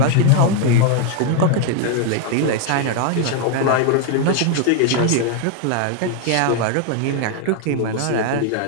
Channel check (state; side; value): different; both; correlation 0.00